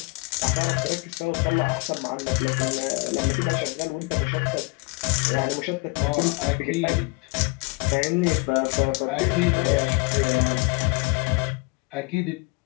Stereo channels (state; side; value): quieter; right; 27.7 dB